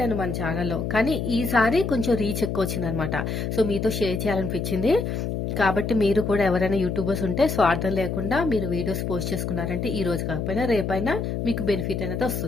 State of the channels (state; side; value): noise; left; hum, 2 dB below the sound